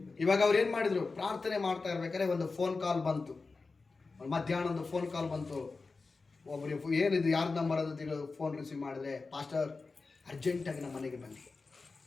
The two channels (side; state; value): right; quieter; 4.0 dB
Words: ಇವಾಗ ಅವ್ರು ಏನು ಮಾಡಿದ್ರು, ಪ್ರಾರ್ಥನೆ ಮಾಡ್ತಾ ಇರ್ಬೇಕಾದ್ರೆ ಒಂದು ಫೋನ್ ಕಾಲ್ ಬಂತು. ಮಧ್ಯಾಹ್ನ ಒಂದು ಫೋನ್ ಕಾಲ್ ಬಂತು. ಒಬ್ಬರು ಏನಿದು ಯಾರ್ದು ನಂಬರ್ ಅಂತ ಫೋನ್ ರಿಸೀವ್ ಮಾಡಿದ್ರೆ, ಪಾಸ್ಟರ್ ಅರ್ಜೆಂಟಾಗಿ ನಮ್ಮ ಮನೆಗೆ ಬನ್ನಿ,